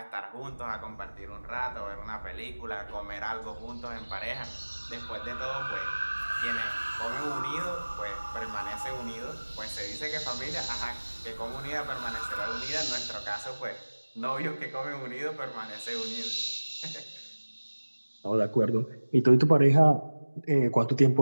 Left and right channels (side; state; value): both; inverted; correlation -1.00